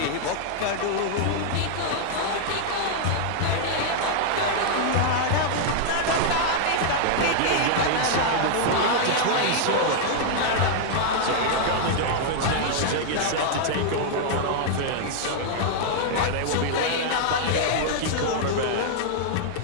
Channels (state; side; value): different; both; correlation -0.01